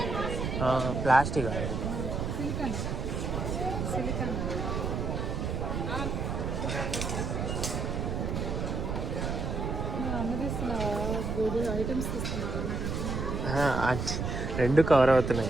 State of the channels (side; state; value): right; noise; rumble, 2 dB below the sound